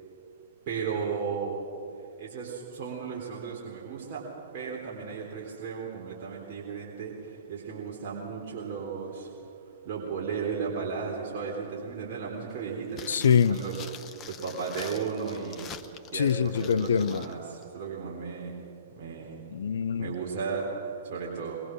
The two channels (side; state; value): both; inverted; correlation -0.52